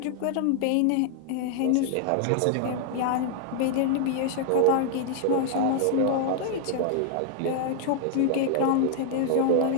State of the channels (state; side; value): different; both; correlation 0.00